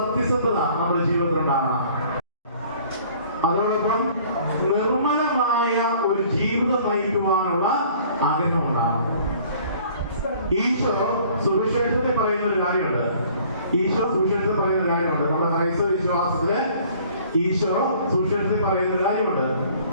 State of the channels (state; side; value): inverted; both; correlation -0.54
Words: നമ്മുടെ ജീവിതത്തിലുണ്ടാകണം. അതോടൊപ്പം നിർമ്മലമായ ഒരു ജീവിതം നയിക്കുവാനുള്ള ആഗ്രഹം ഉണ്ടാകണം. ഈശോ സുവിശേഷത്തിൽ പറയുന്ന ഒരു കാര്യമുണ്ട്. നമ്മുടെ ക്രൈസ്തവ വിശ്വാസത്തില് ഈശോ സുവിശേഷത്തിൽ പറയുന്ന ഒരു കാര്യമുണ്ട്.